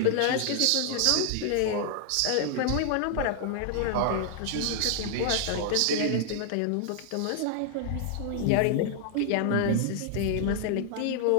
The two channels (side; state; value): both; different; correlation 0.00